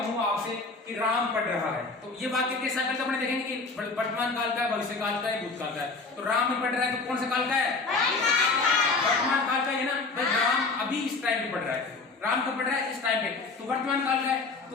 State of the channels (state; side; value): quieter; right; 4.0 dB